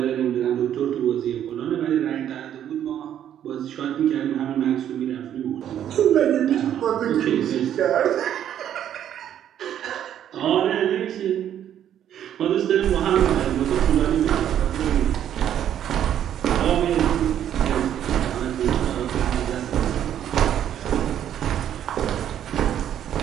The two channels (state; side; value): quieter; left; 10.3 dB